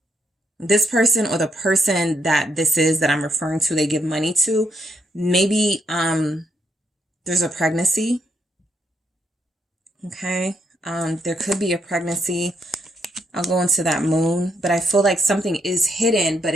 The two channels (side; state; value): both; normal; correlation 0.76